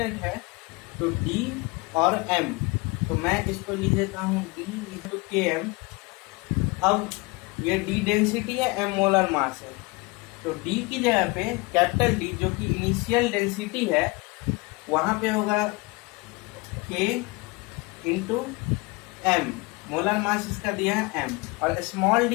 है। तो d और m, तो मैं इसको लिख देता हूँ d टू के एम। अब ये d डेंसिटी है, m मोलर मास है, तो d की जगह पे कैपिटल D जो कि इनिशियल डेंसिटी है, वहां पे होगा k into m, molar mass इसका दिया है m, और स्मॉल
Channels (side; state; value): right; quieter; 25.6 dB